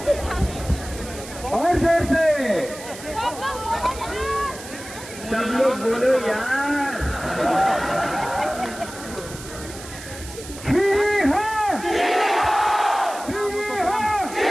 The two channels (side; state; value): right; noise; hiss, 14 dB below the sound